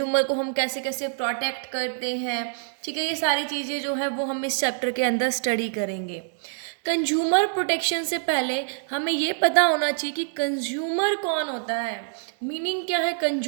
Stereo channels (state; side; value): silent; left; digital silence